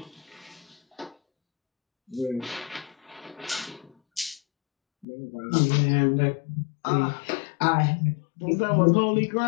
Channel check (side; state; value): right; drops out; at 5.1 s